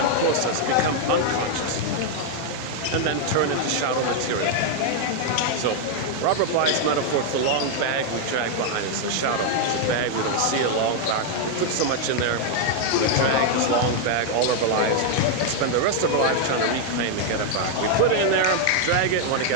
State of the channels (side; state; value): both; different; correlation 0.00